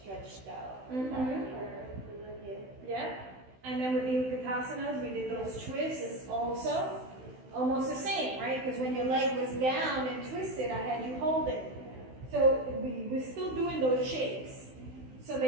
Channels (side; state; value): left; late; 16 ms